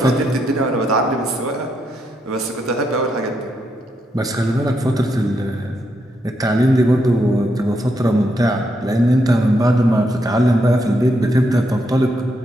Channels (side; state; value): both; normal; correlation 0.80